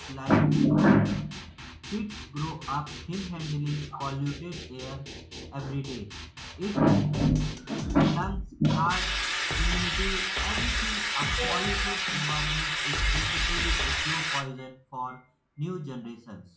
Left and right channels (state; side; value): identical; both; correlation 1.00